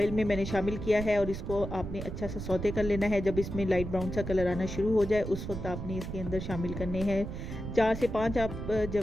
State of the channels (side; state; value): right; noise; rumble, 7 dB below the sound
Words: में मैंने शामिल किया है और इसको आपने अच्छा सा सौते कर लेना है। जब इसमें लाइट ब्राउन सा कलर आना शुरू हो जाए उस वक्त आपने इसके अंदर शामिल करने हैं 4 से 5 आप